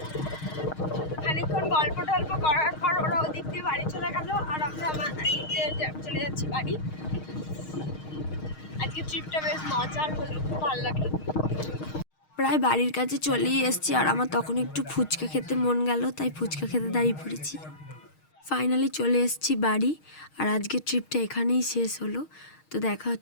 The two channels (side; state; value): right; late; 6.4 ms